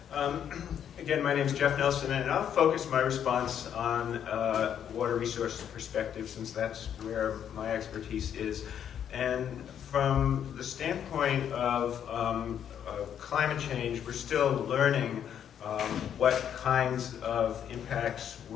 Again, my name is Jeff Nelson, and I'll focus my response on water resources perspective, since that's where my expertise is. And from the standpoint of climate change, we're still learning what kinds of impacts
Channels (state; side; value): quieter; right; 9.1 dB